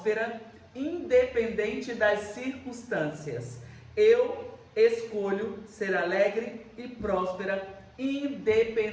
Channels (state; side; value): identical; both; correlation 1.00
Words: independente das circunstâncias. Eu escolho ser alegre e próspera,